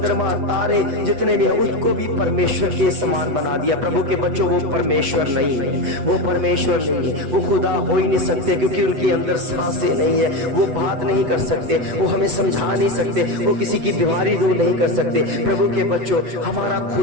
तारे जितने भी हैं उसको भी परमेश्वर के समान बना दिया। प्रभु के बच्चों, वो परमेश्वर नहीं है, वो परमेश्वर नहीं है, वो खुदा हो ही नहीं सकते, क्योंकि उनके अंदर सांसें नहीं है, है, वो बात नहीं कर सकते, वो हमें समझा नहीं सकते, वो किसी की बीमारी दूर नहीं कर सकते। प्रभु के बच्चों, हमारा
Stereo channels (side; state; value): left; late; 8.1 ms